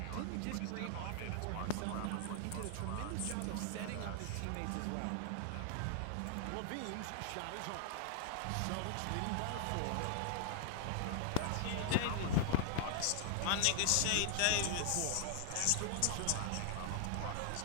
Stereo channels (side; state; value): both; different; correlation -0.01